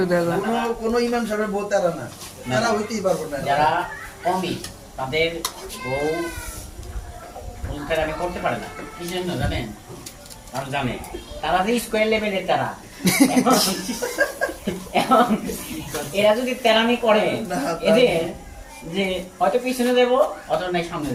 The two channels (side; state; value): both; identical; correlation 1.00